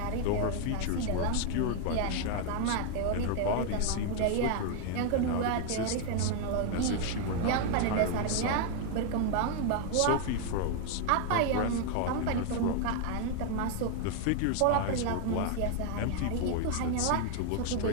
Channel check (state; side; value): different; both; correlation 0.00